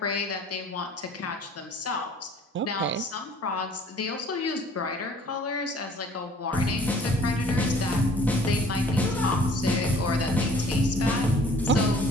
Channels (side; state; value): both; normal; correlation 0.53